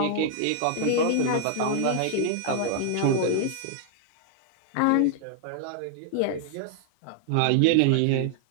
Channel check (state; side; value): different; both; correlation 0.00